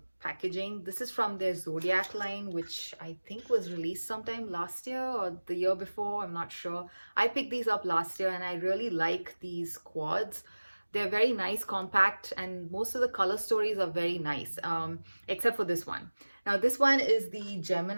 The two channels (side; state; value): both; inverted; correlation -1.00